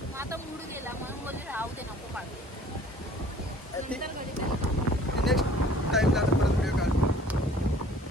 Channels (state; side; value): normal; both; correlation 0.52